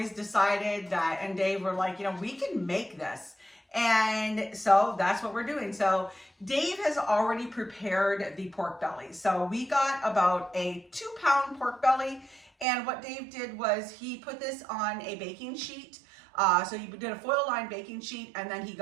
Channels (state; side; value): drops out; left; at 12.7 s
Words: decided that, and Dave were like, we can make this. And so that's what we're doing. So Dave has already prepared the pork belly. So we got about a 2-pound pork belly. And what Dave did was he put this on a baking sheet. So he did a foil lined baking sheet, and then he